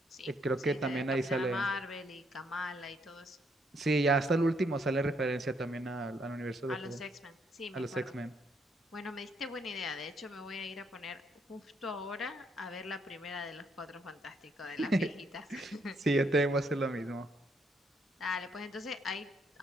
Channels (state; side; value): normal; both; correlation 0.72